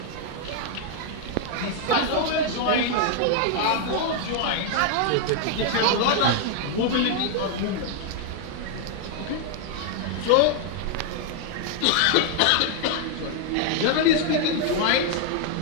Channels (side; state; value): both; different; correlation 0.00